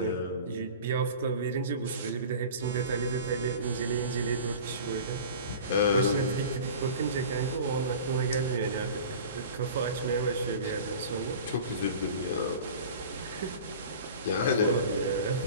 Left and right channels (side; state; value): both; inverted; correlation -0.39